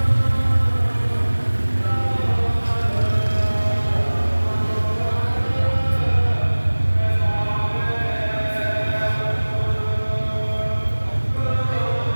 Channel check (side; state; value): both; inverted; correlation -1.00